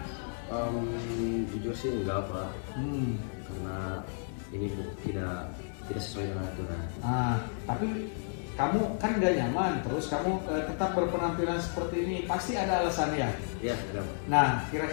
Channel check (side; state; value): right; silent; 56 dB below the other